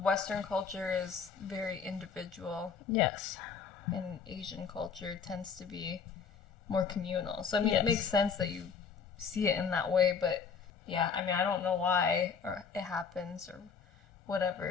Western culture is very individual. Yes. And Asian culture tends to be more communal. So, I mean, it makes sense that you see it in that way, but yeah, I mean, I don't know why or it happens or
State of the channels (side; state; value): right; quieter; 6.0 dB